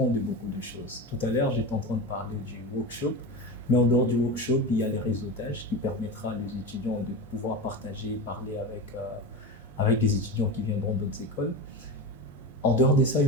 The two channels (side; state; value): both; normal; correlation 0.23